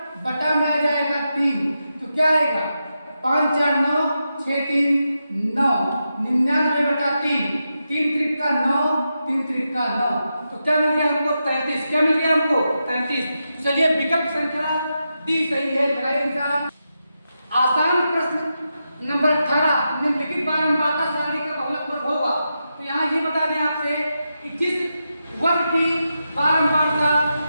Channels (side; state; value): both; inverted; correlation -0.87